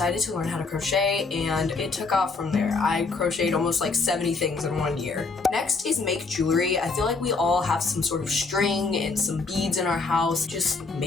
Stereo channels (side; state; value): right; quieter; 4.1 dB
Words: to learn how to crochet and it took off from there. I crocheted almost like 70 things in 1 year. Next is make jewelry. I feel like we all have some sort of string and some beads in our house. Just